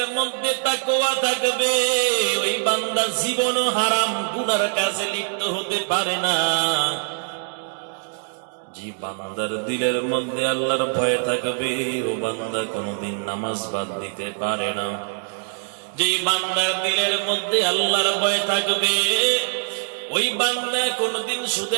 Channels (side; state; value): left; silent; digital silence